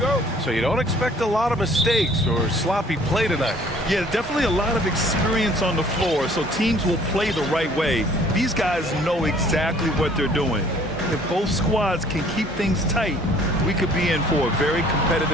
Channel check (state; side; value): normal; both; correlation 0.55